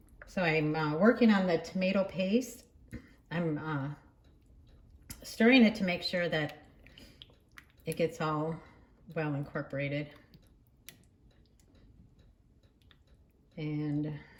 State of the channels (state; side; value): identical; both; correlation 1.00